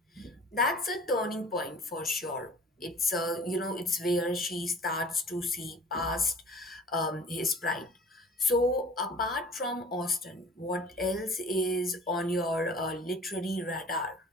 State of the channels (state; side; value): normal; both; correlation 0.46